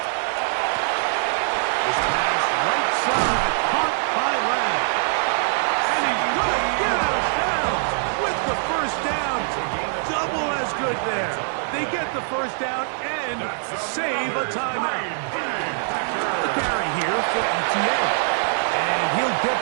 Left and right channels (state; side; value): silent; left; 56 dB below the other